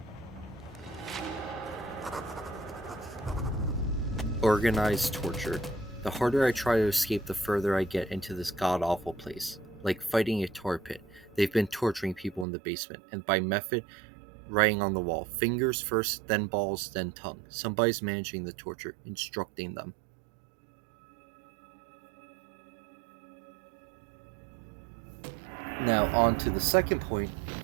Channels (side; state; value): left; drops out; at 12.5 s